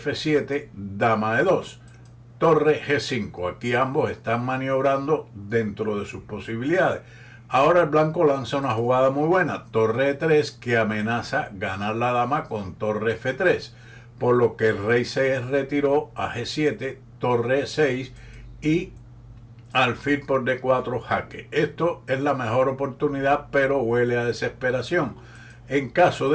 dama E2. Torre G5. Aquí ambos están maniobrando dentro de sus posibilidades. Ahora el blanco lanza una jugada muy buena, torre E3, que amenaza ganar la dama con torre F3, por lo que el rey se retiró a G7, torre E6 y alfil por D4 jaque. Esto es la mejor oportunidad, pero huele a desesperación. En caso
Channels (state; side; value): identical; both; correlation 1.00